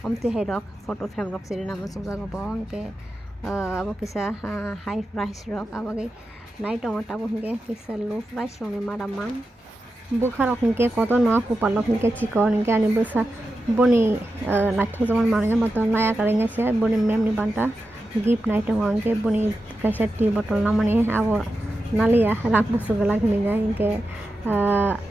omti hai rok photo frame rok sini na musung jago bo ke abo kisa high price rok abo ke naik tong tabu hingke kisa low price rong ni maraman bukha rok hingke koto no kupal rok hingke chikon hingke ani busa boni naik tong zaman mananya motor naya karenga se boni mem ni banta gift naik tong hingke boni kaisa tea bottle namani abo nalia rang busu gala hingga hingke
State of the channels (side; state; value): both; normal; correlation 0.90